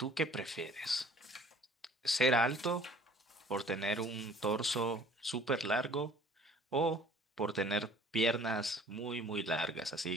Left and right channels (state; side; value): normal; both; correlation 0.52